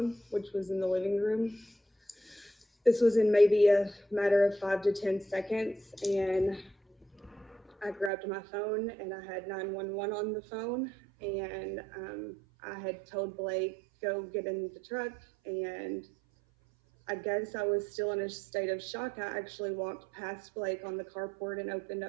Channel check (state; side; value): drops out; left; at 8.1 s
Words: which was in the living room. This was in maybe a matter of 5 to 10 seconds, and I grabbed my phone and I had 911 on the phone, and I had told Blake, go get in the truck, and I guess I was still in a state of shock. I actually walked past Blake on the carport and opened